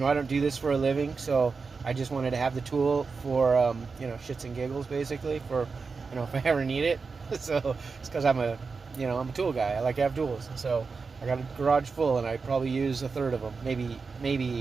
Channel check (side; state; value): left; quieter; 4.7 dB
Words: I don't do this for a living. So I just wanted to have the tool for, you know, shits and giggles, basically, for, you know, if I ever need it. So it's because I'm a tool guy. I like to have tools. So I got a garage full, and I probably use a third of them,